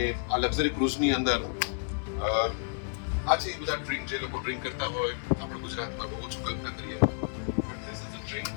આ લક્ઝરી ક્રૂઝની અંદર આ છે એ બધા ડ્રિંક, જે લોકો ડ્રિંક કરતા હોય, આપણે ગુજરાતમાં બહુ ઓછું કલ્પના કરીએ. This is the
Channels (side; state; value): right; silent; 57 dB below the other